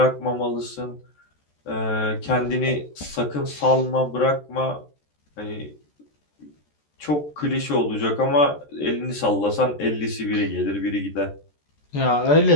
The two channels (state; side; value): late; right; 14 ms